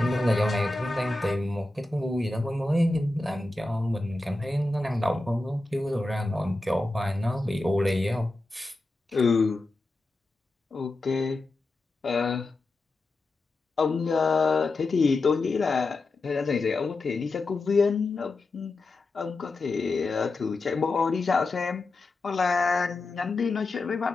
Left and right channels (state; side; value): quieter; right; 3.1 dB